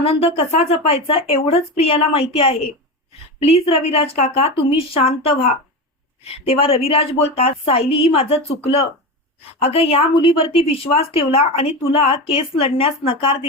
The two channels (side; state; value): both; normal; correlation 0.21